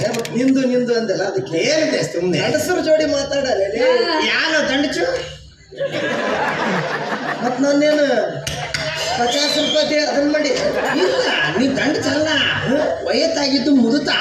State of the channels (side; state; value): both; identical; correlation 1.00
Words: ನಿಂದು ನಿಂದು ಅಂದಲ್ಲ ಅದಕ್ಕೆ ಹೇಳಿದೆ ಸುಮ್ಮನೆ ಗಂಡಸರು ಜೋಡಿ ಮಾತಾಡಲ್ಲ ಯಾರು ದಂಡಚು ಮತ್ ನಾನೇನು 50 ರೂಪಾಯಿ ಅದನ್ನ ಮಾಡಿ ಇಲ್ಲ ನೀ ದಂಡ ಚಲ್ಲ ವಯಸ್ಸಾಗಿದ್ದು ಮುದುತಾ